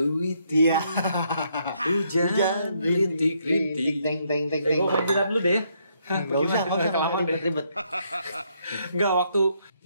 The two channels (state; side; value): inverted; both; correlation -0.73